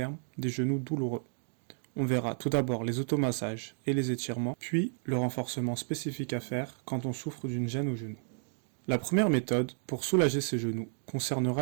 des genoux douloureux. On verra tout d'abord les automassages et les étirements, puis le renforcement spécifique à faire quand on souffre d'une gêne au genou. La première méthode pour soulager ses genoux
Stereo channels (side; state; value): left; silent; digital silence